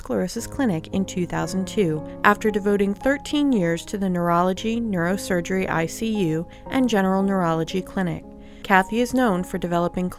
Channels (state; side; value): identical; both; correlation 1.00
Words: Clinic in 2002 after devoting 13 years to the Neurology, Neurosurgery ICU, and General Neurology Clinic. Kathy is known for developing